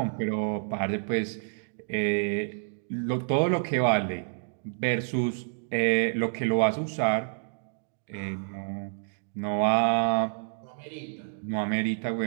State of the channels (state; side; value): silent; left; digital silence